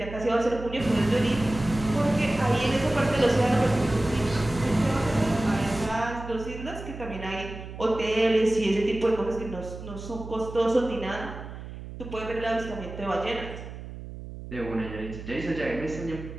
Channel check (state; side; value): noise; right; hum, 11 dB below the sound